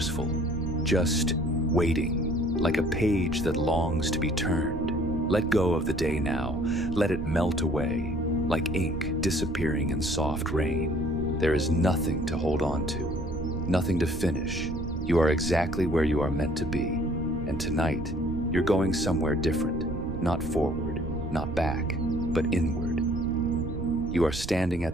just waiting, like a page that longs to be turned. Let go of the day now, let it melt away, like ink disappearing in soft rain. There is nothing to hold on to, nothing to finish. You are exactly where you are meant to be, and tonight, you're going somewhere different, not forward, not back, but inward. You are standing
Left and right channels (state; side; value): noise; right; rumble, 9 dB below the sound